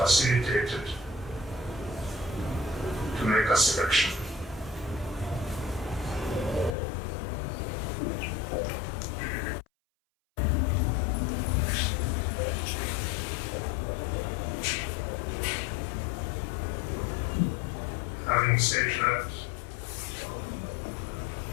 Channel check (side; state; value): right; drops out; at 6.8 s